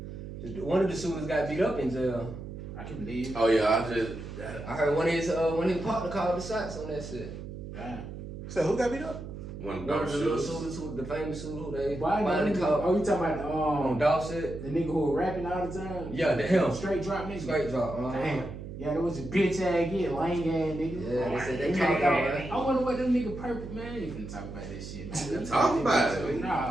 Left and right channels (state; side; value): noise; right; hum, 10 dB below the sound